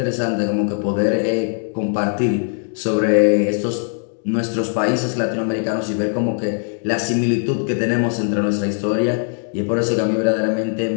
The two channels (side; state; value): right; silent; 57 dB below the other